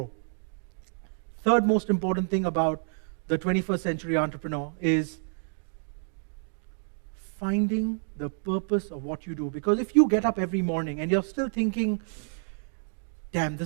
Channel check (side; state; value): left; silent; digital silence